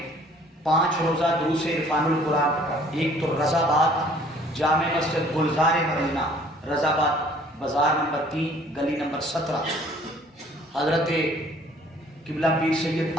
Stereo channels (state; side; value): normal; both; correlation 0.56